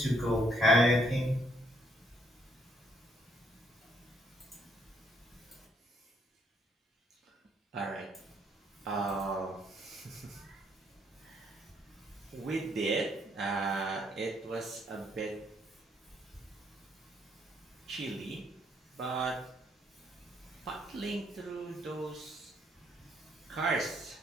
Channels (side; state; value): both; normal; correlation 0.70